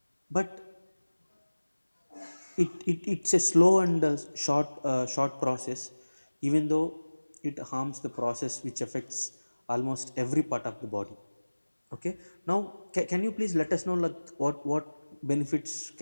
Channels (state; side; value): inverted; both; correlation -1.00